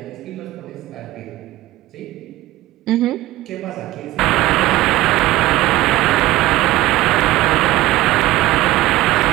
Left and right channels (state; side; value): quieter; left; 16.7 dB